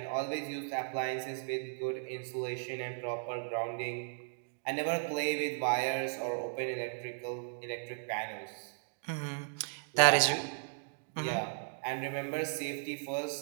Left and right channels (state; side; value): silent; left; digital silence